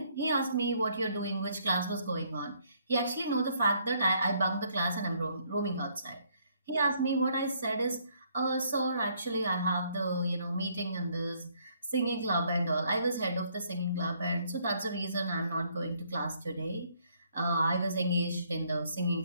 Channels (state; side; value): inverted; both; correlation -0.67